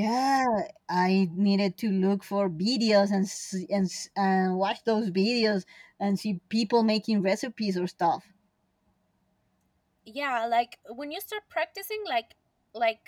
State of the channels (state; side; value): identical; both; correlation 1.00